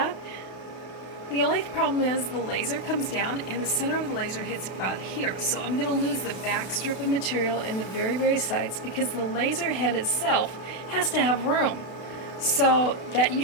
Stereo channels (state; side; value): late; right; 32 ms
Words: The only problem is the laser comes down and the center of the laser hits about here. So I'm going to lose the back strip of material in the very, very sides because the laser head itself has to have room. So that you